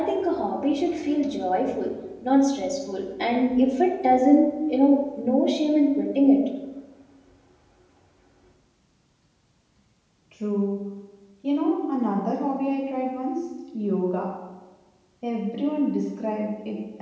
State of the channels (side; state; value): both; identical; correlation 1.00